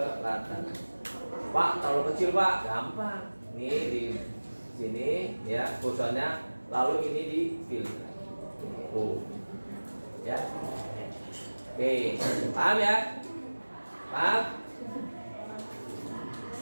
Pak, terlalu kecil Pak, gampang. Nih di sini ya kursornya, lalu ini di pilih. Ya. Oke, paham ya? Paham?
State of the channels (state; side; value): inverted; both; correlation -1.00